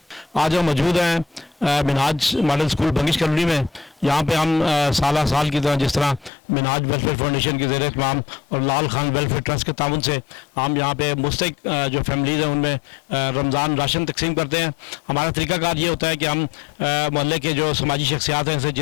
आज हम मौजूद हैं Minhaj model school Bangash colony में। यहाँ पे हम साल की तरह जिस तरह मिनहाज वेलफेयर फाउंडेशन के ज़रिए तमाम और लाल खान वेलफेयर ट्रस्ट के ताउन से हम यहाँ पे मुस्तहिक जो फैमिलीज़ हैं उनमें रमज़ान राशन तकसीम करते हैं। हमारा तरीक़ाकार ये होता है कि हम मोहल्ले के जो समाजी शख्सियात हैं, जैसे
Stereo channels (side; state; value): right; drops out; at 6.3 s